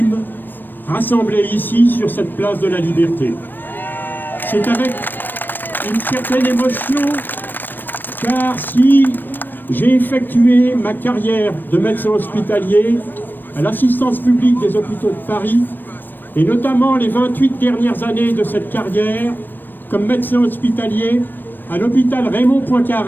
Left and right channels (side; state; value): right; late; 0.093 ms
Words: rassemblés ici sur cette place de la Liberté. C'est avec une certaine émotion, car si j'ai effectué ma carrière de médecin hospitalier à l'assistance publique des hôpitaux de Paris, et notamment les 28 dernières années de cette carrière comme médecin hospitalier à l'hôpital Raymond